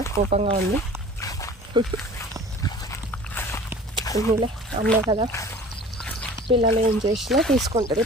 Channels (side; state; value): both; normal; correlation 0.44